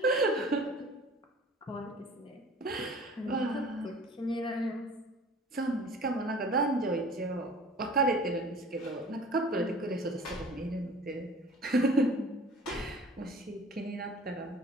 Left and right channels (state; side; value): normal; both; correlation 0.45